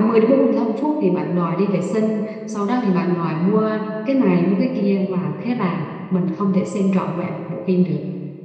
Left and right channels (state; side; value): identical; both; correlation 1.00